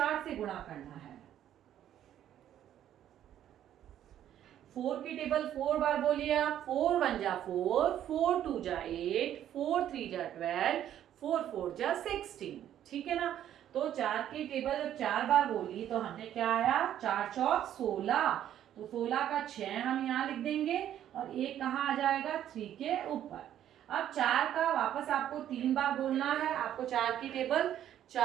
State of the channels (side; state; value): left; quieter; 11.0 dB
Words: से गुणा करना है। 4 की टेबल 4 बार बोलिए आप, 4 1 जा 4, 4 2 जा 8, 4 3 जा 12, 4 4 जा 16। ठीक है ना, तो 4 की टेबल जब 4 बार बोली तो हमने क्या आया, 4 चौक 16, तो 16 का 6 हम यहाँ लिख देंगे और 1 कहाँ आ जाएगा, 3 के ऊपर। अब 4 का वापस आपको 3 बार बोलना है। आपको 4 की टेबल